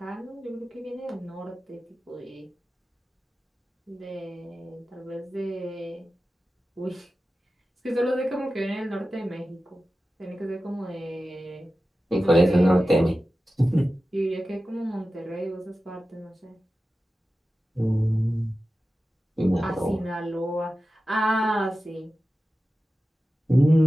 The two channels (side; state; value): both; normal; correlation 0.94